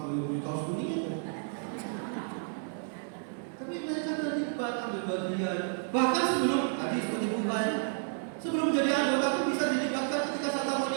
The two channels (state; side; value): silent; left; digital silence